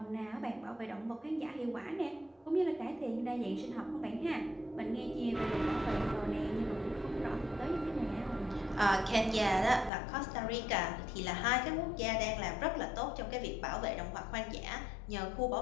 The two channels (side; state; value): right; drops out; at 9.9 s